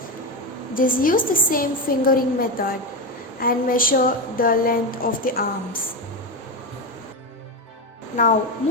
just use the same fingering method and measure the length of the arms. Now,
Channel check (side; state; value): both; normal; correlation 0.15